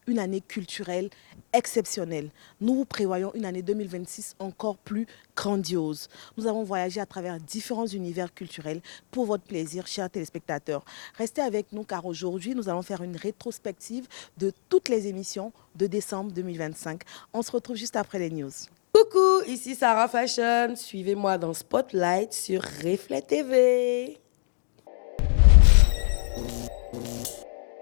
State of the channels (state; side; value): silent; right; digital silence